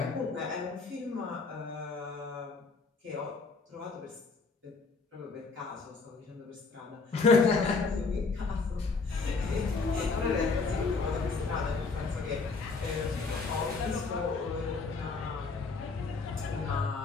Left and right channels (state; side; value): quieter; right; 4.3 dB